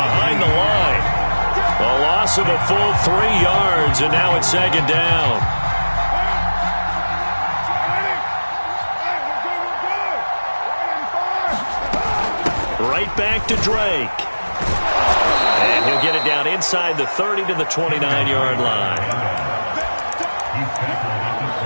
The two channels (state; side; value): inverted; both; correlation -1.00